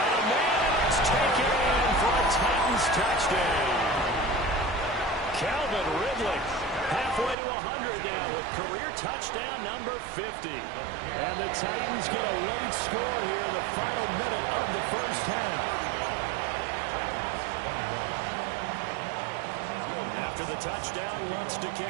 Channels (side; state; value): left; drops out; at 7.4 s